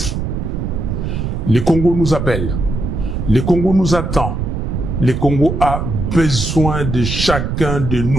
Le Congo nous appelle. Le Congo nous attend. Le Congo a besoin de chacun de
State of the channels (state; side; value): noise; right; rumble, 3 dB below the sound